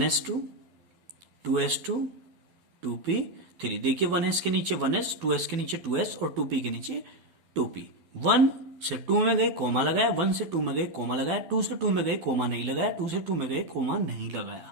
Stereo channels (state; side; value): late; left; 12 ms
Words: 2s2 2p3। देखिए 1s के नीचे 1s, 2s के नीचे 2s और 2p के नीचे 2p। 1 से 2 में गए कोमा लगाया, 1 से 2 में गए कोमा लगाया, 2 से 2 में गए कोमा नहीं लगाया, 2 से 2 में गए कोमा नहीं लगाया।